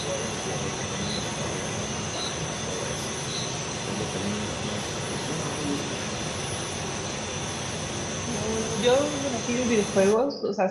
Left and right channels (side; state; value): both; identical; correlation 1.00